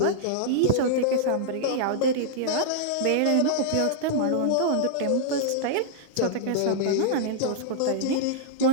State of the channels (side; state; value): both; different; correlation -0.02